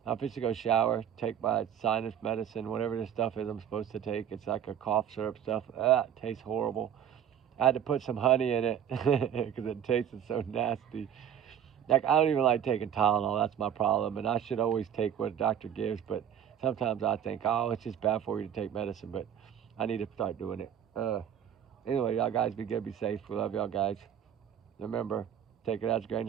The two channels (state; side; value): quieter; left; 9.3 dB